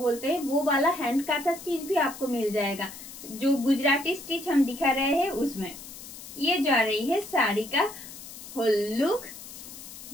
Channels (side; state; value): left; noise; hiss, 14 dB below the sound